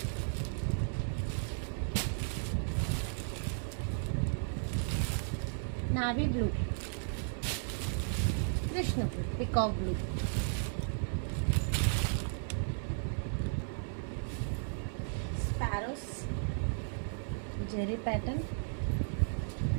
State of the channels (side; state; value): left; silent; 55 dB below the other